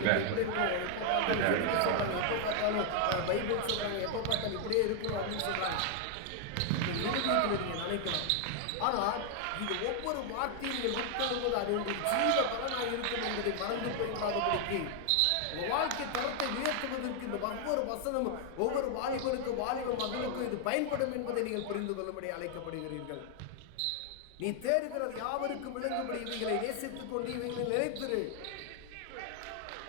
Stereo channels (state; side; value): different; both; correlation 0.00